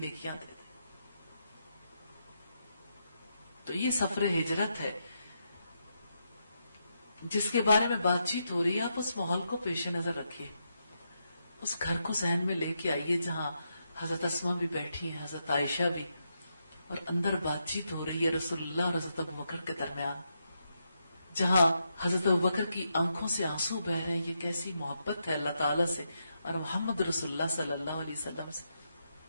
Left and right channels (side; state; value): both; inverted; correlation -0.82